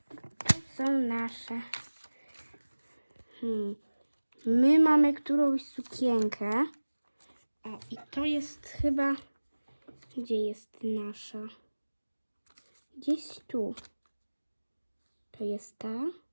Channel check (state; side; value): inverted; both; correlation -1.00